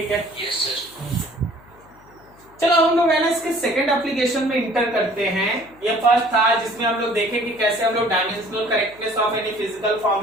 है। Yes sir. चलो हम लोग है ना इसके सेकंड एप्लीकेशन में इंटर करते हैं। ये फर्स्ट था जिसमें हम लोग देखें कि कैसे हम लोग dimensional correctness of any physical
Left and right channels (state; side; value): noise; left; hum, 26 dB below the sound